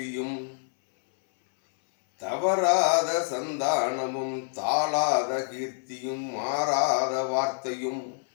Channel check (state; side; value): silent; right; 60 dB below the other